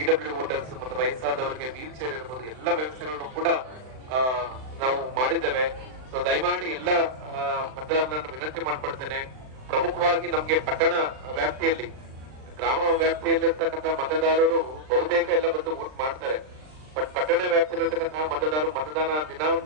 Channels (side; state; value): left; late; 39 ms